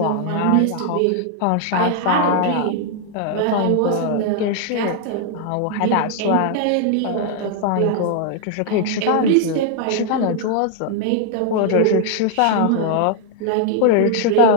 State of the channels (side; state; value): both; different; correlation 0.00